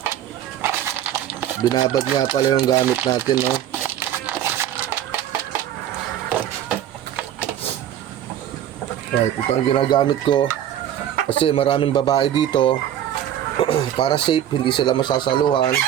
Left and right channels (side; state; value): left; quieter; 11.0 dB